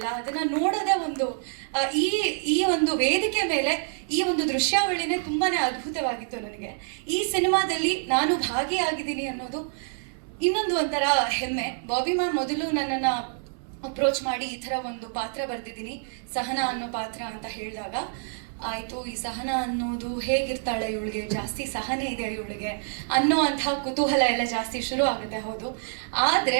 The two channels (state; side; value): silent; left; 60 dB below the other